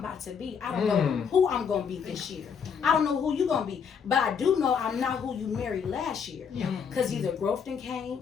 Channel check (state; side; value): quieter; right; 6.7 dB